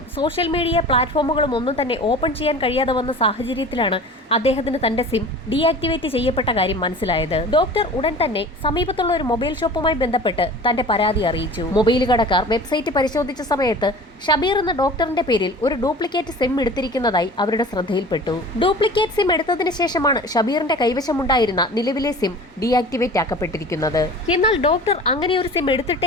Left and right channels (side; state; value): both; normal; correlation 0.40